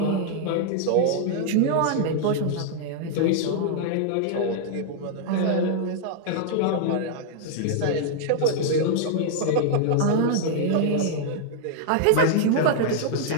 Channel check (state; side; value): different; both; correlation -0.01